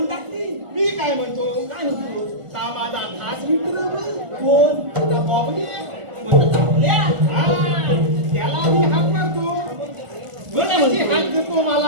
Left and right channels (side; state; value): left; late; 1.5 ms